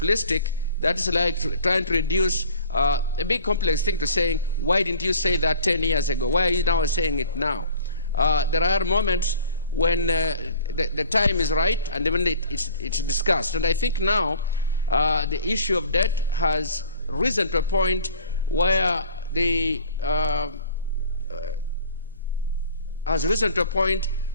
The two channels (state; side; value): inverted; both; correlation -0.48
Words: That is like trying to reduce a big complex thing to saying, why didn't you say that 10 years ago? Why are you now saying it now? There are moments when the time is right and when it's discussed. And I think now the issue of debt has risen to a point where